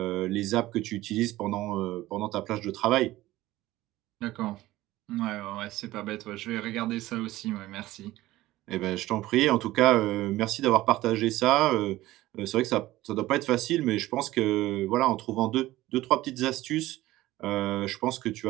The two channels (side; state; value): left; quieter; 16.7 dB